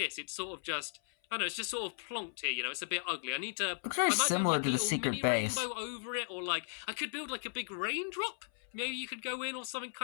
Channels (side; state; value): right; silent; 54 dB below the other